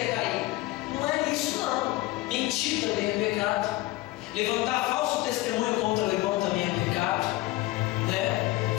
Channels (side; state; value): right; quieter; 18.8 dB